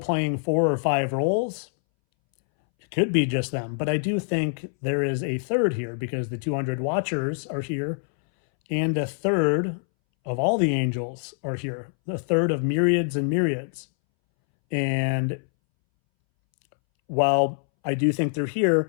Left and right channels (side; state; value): right; silent; 62 dB below the other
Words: 4 or 5 roles, it could be just them. But I do think there is a third here, because the 200 watchers are here, and a third of all the angels are here, a third of myriads and myriads. And while I do think they're